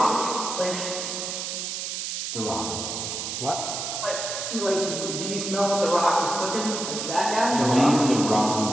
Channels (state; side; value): noise; right; hiss, 4 dB below the sound